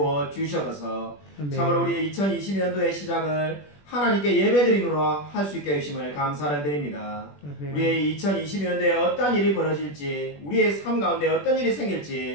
주셔서 참으로 우리 2022년도의 시작을 하나님께 예배드림으로 할 수 있게 해주심을 감사를 드립니다. 우리의 2022년도에 어떤 일이 벌어질지 우리의 삶 가운데 어떤 일이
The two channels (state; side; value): late; right; 21 ms